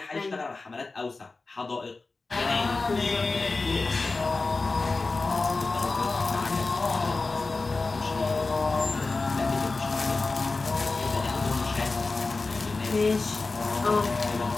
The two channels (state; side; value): quieter; right; 3.7 dB